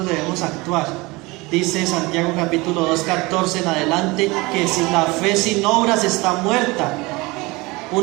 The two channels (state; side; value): quieter; left; 23.6 dB